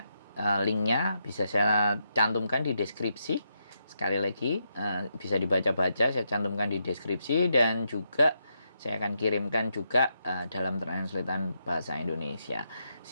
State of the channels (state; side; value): inverted; both; correlation -0.81